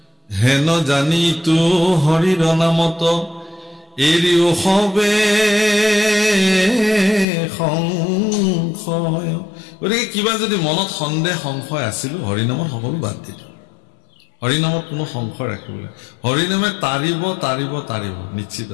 হেন জানিতো হৰিৰ নামত এৰিও হবে সংশয় গতিকে কিবা যদি মনত সন্দেহ সংশয় আছিল হৰিনামত সকলো বাদ দিলো হৰিনামত কোনো সংশয় ৰাখিবলৈ হৰিনামে তাৰিব নিশ্চিত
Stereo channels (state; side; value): drops out; right; at 7.2 s